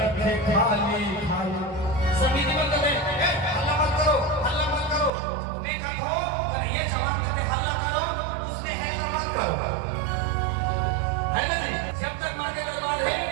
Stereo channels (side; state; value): left; drops out; at 5.1 s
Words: है खाली खाली। समिति बंद कर दे, हल्ला मत करो, हल्ला मत करो। मैं कहता हूँ ये जवान करके हल्ला करो, उसने है तो मत करो, है ना जी? जब तक माँ के दरबार है